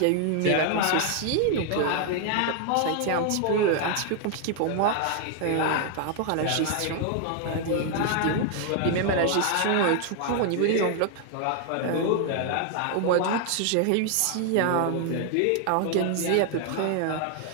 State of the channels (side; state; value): both; different; correlation 0.00